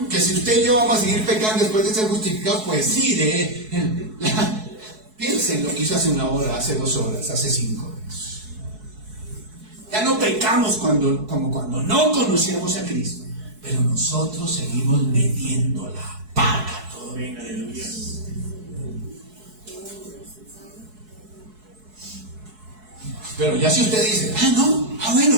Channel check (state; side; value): late; left; 4.7 ms